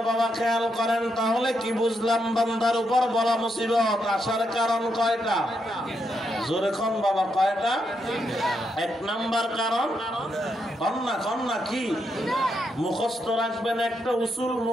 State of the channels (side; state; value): both; normal; correlation 0.80